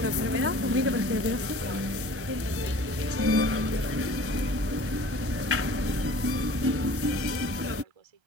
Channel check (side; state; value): left; late; 1.3 ms